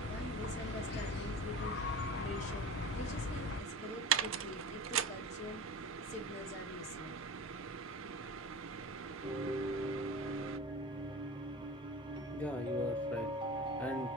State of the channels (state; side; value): normal; both; correlation 0.33